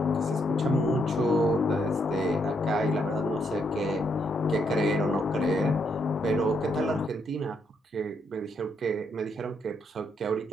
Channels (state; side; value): normal; both; correlation 0.76